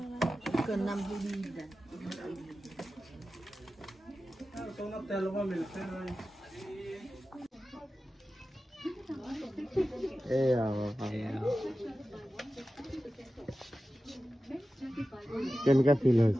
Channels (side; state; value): both; normal; correlation 0.94